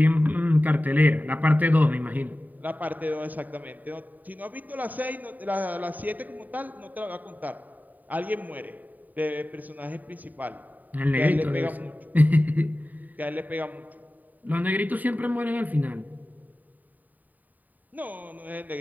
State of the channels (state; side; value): late; left; 0.083 ms